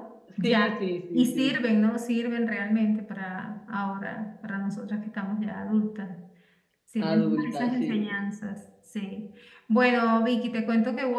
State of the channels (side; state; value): both; identical; correlation 1.00